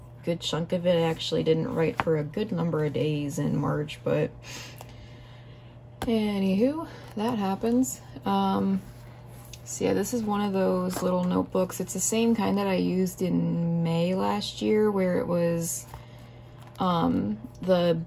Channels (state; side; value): identical; both; correlation 1.00